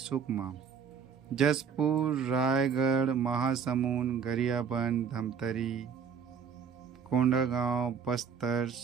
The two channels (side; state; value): left; quieter; 6.7 dB